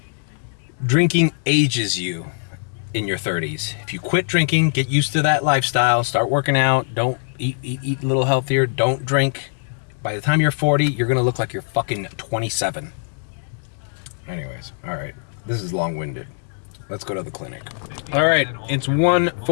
Drinking ages you in your 30s. If you quit drinking, get used to that lifestyle, start working out, don't eat a little healthier, don't drink. By the time you're 40, you're going to look like you're fucking 27. Anyways, all right. This is long-winded. Let's go to the clinic. All right, it's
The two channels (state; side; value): silent; right; digital silence